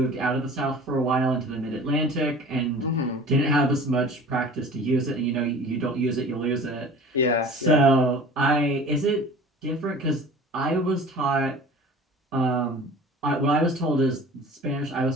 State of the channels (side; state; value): both; normal; correlation 0.42